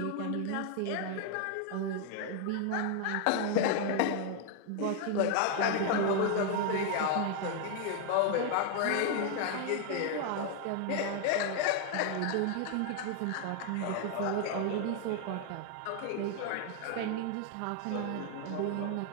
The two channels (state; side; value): different; both; correlation 0.00